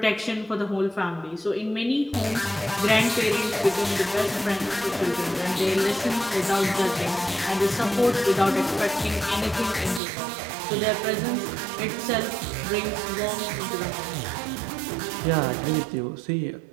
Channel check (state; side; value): drops out; left; at 10.0 s